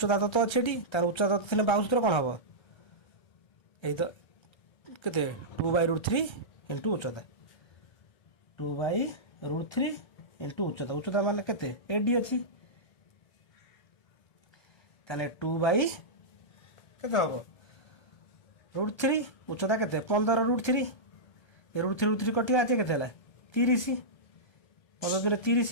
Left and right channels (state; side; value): late; right; 1.3 ms